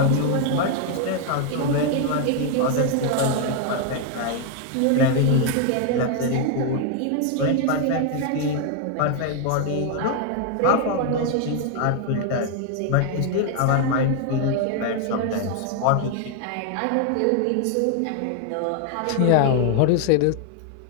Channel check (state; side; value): different; both; correlation 0.00